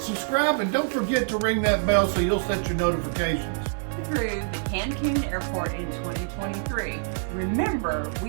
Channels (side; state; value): left; silent; digital silence